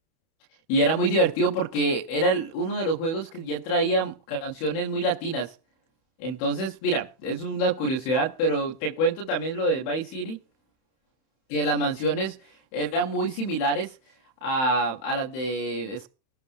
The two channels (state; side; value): late; right; 31 ms